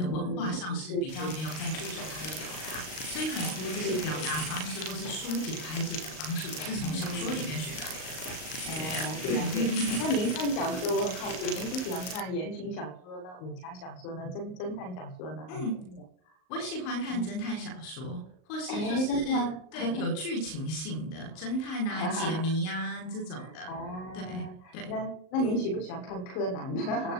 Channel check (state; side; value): late; right; 38 ms